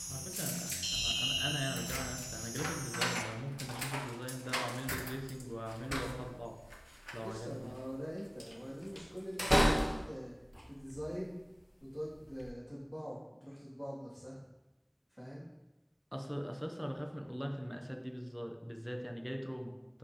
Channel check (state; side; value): identical; both; correlation 1.00